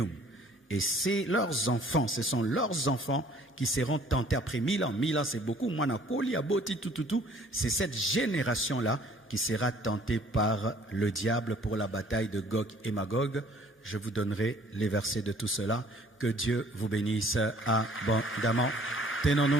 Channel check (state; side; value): normal; both; correlation 0.56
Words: Et c'est leurs enfants, ce sont leurs enfants qui seront tentés après 1000 ans. 1000 ans, c'est beaucoup. C'est cette génération-là qui sera tentée par le diable pour la bataille de Gog et Magog. Je vous donnerai les versets de tout cela. Que Dieu vous bénisse abondamment.